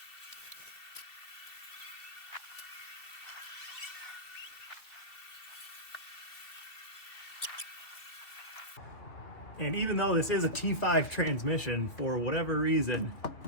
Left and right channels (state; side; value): late; right; 2.7 ms